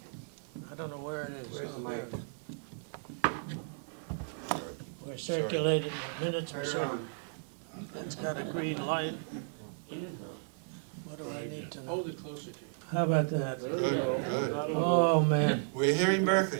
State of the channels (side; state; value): left; silent; 55 dB below the other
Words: I don't know where it is. Where's the Oh, there mic? it is. Were circulated, the minutes were circulated. It's got a green light. What do I need to know? Hold it closer to you. How about that? There we Good, go. good. That'll do. Oh, man. We're hearing Berkeley.